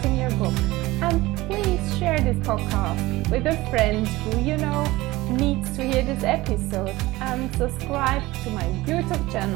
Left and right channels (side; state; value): left; quieter; 19.3 dB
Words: your book. And please share this podcast with a friend who you know needs to hear this episode, and subscribe to my YouTube